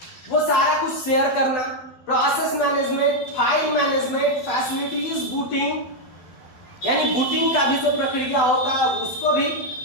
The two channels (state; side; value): late; right; 12 ms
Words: वो सारा कुछ शेयर करना, process management, file management, facilities, booting, यानी बूटिंग का भी जो प्रक्रिया होता है उसको भी